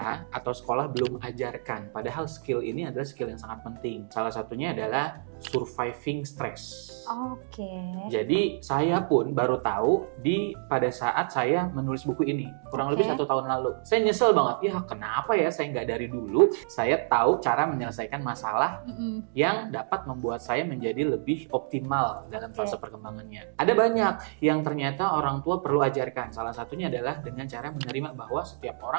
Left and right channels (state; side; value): silent; left; digital silence